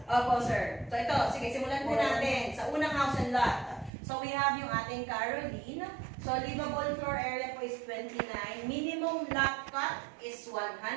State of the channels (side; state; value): left; drops out; at 3.9 s